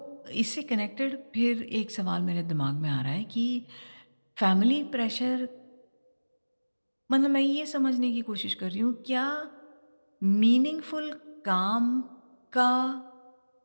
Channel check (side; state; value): both; inverted; correlation -1.00